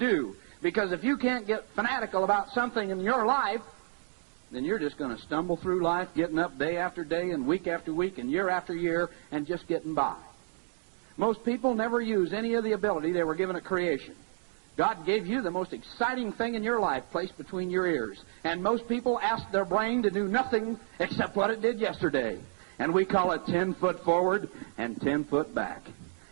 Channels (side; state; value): left; silent; digital silence